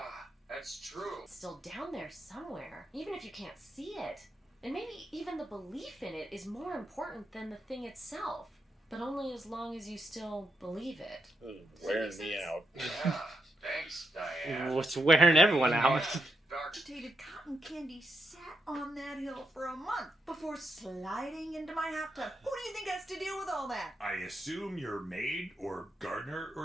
that's true. It's still down there somewhere, even if you can't see it. And maybe even the belief in it is more important than the thing itself. But only as long as you still believe it. Wearing me out. Yeah, thanks, Diane. What's wearing everyone out? Agitated cotton candy sat on that hill for a month before sliding into my hot tub. Who do you think has to deal with all that? I assume you're maid or gardener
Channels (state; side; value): normal; both; correlation 0.82